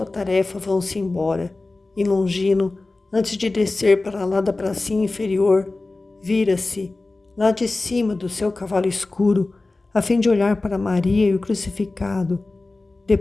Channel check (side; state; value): right; quieter; 3.2 dB